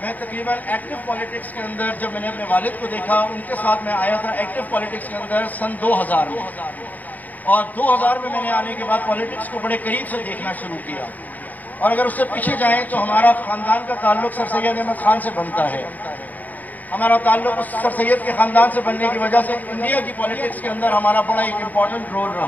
تقریباً ایکٹیو پالیٹکس کے اندر جب میں نے اپنے والد کو دیکھا، ان کے ساتھ میں آیا تھا ایکٹیو پالیٹکس کے اندر سن 2000 میں، اور 2000 میں نے آنے کے بعد پالیٹکس کو بڑے قریب سے دیکھنا شروع کیا۔ اور اگر اس سے پیچھے جائیں تو ہمارا خاندان کا تعلق سر سید احمد خان سے بنتا ہے۔ ہمارا تعلق اس سر سید کے خاندان سے بننے کی وجہ سے انڈیا کی پالیٹکس کے اندر ہمارا بڑا ایک امپورٹنٹ رول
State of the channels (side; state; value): right; late; 0.080 ms